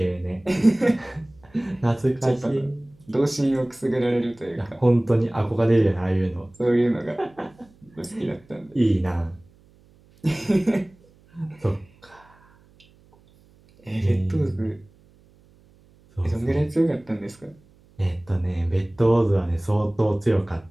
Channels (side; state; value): right; noise; hum, 29 dB below the sound